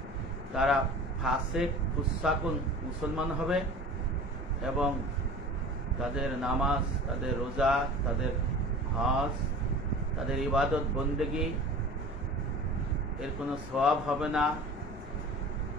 তারা ফাসেক ফুসাকুন মুসলমান হবে এবং তাদের নামাজ, তাদের রোজা, তাদের হজ, তাদের ইবাদত বন্দেগী এর কোনো সওয়াব হবে না।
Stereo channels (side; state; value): both; normal; correlation 0.39